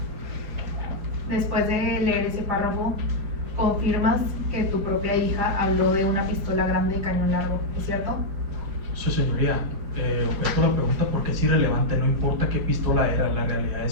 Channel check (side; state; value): left; late; 5.7 ms